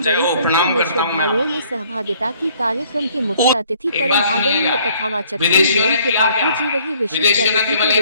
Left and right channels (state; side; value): inverted; both; correlation -0.61